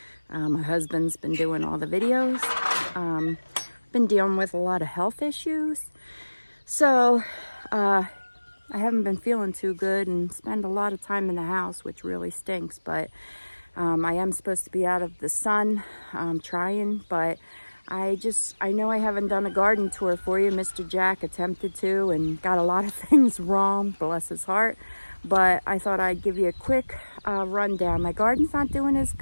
My husband's been doing all the videos. Been dealing with a lot of health issues. So I haven't been feeling too good and spend a lot of time in the house, which really stinks. But I am supposed to be out of the sun, trying, but I know I haven't done a garden tour for you. Mr. Jack attempted to and got a lot of things wrong, bless his heart. But I thought I'd give you a quick rundown. My garden's not doing as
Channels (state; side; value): inverted; both; correlation -1.00